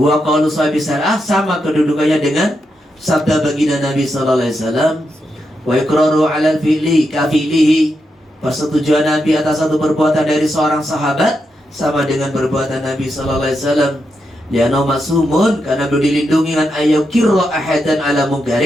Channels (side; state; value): both; normal; correlation 0.84